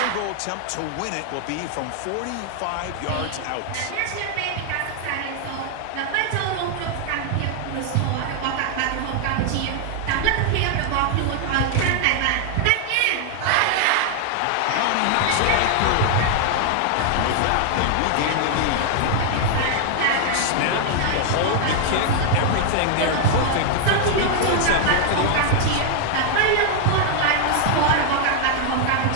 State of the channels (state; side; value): different; both; correlation 0.00